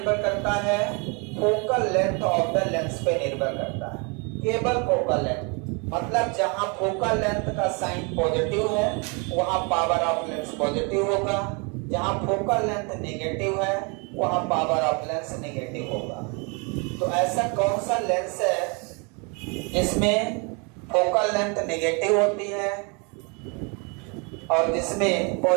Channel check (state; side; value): quieter; left; 32.6 dB